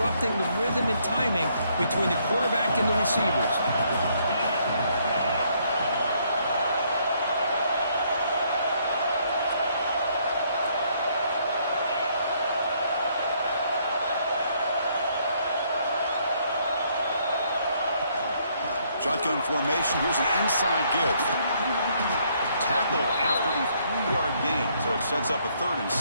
the rhythm and timing between the quarterback and the receivers. Shotgun formation. Here's an inside give. Tackled after a 3-yard gain, so it sets up a 3rd and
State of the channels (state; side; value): inverted; both; correlation -0.69